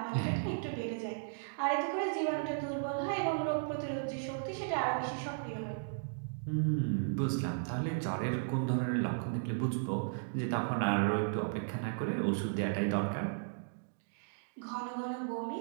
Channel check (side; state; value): left; silent; digital silence